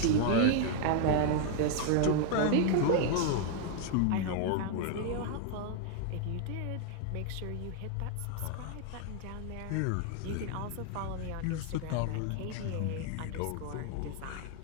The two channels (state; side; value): different; both; correlation 0.00